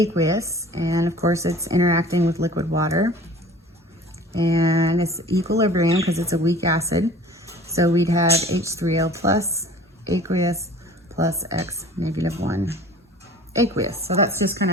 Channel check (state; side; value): normal; both; correlation 0.46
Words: and of course it's interacting with liquid water, and it's equilibrium because it's a weak acid. So we'd have H3O plus aqueous plus X -1 aqueous. So that's just kind